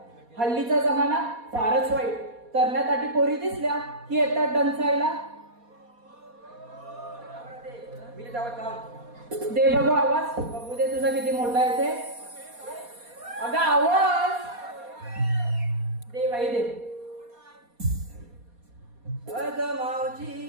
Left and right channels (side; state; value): left; late; 4.2 ms